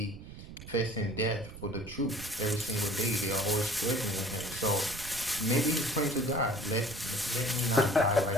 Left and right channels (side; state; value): right; noise; rumble, 13 dB below the sound